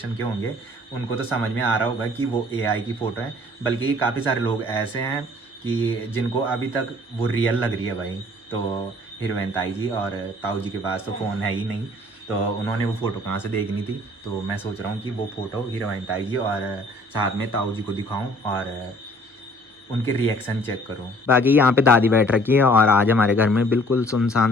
के होंगे उनको तो समझ में आ रहा होगा कि वो AI की फ़ोटो है। बल्कि काफ़ी सारे लोग ऐसे हैं कि जिनको अभी तक वो रियल लग रही है भाई। तो हीरोइन ताई जी और ताऊ जी के पास तो फ़ोन है ही नहीं, तो उन्होंने वो फ़ोटो कहाँ से देखनी थी। तो मैं सोच रहा हूँ कि वो फ़ोटो हीरोइन ताई जी और साथ में ताऊ जी को दिखाऊँ और उनके रिएक्शन चेक करूँ। बाकी यहाँ पे दादी बैठ रखी है, और आज हमारे घर में बिल्कुल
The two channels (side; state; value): both; normal; correlation 0.55